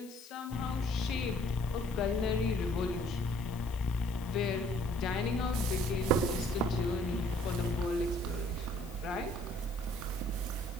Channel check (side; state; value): left; noise; hiss, 20 dB below the sound